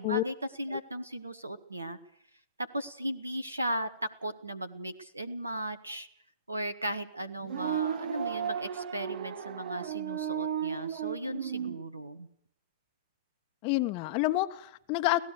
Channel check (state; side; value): inverted; both; correlation -0.39